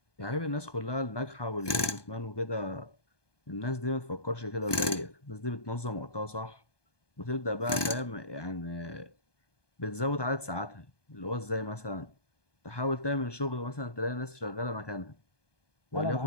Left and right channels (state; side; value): late; right; 1.2 ms